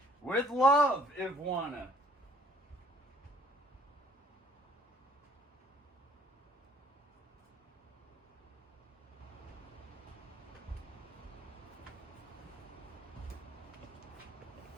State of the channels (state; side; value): normal; both; correlation 0.59